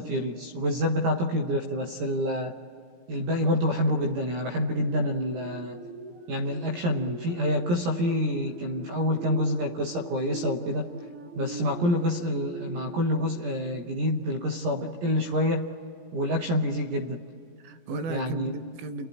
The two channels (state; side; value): late; left; 17 ms